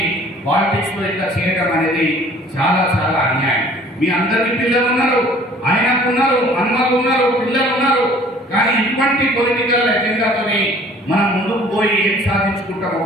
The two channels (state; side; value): normal; both; correlation 0.52